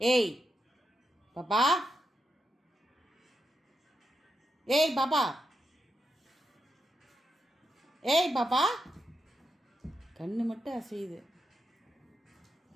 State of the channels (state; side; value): normal; both; correlation 0.85